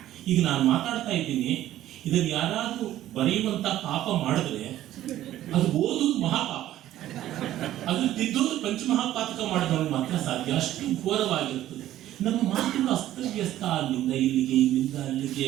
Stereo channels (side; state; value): left; quieter; 13.4 dB